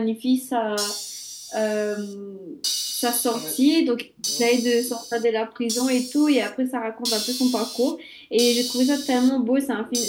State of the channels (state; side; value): identical; both; correlation 1.00